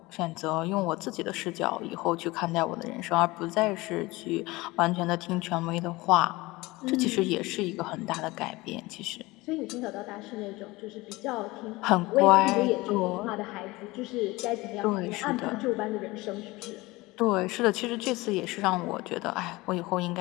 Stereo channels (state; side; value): quieter; right; 21.3 dB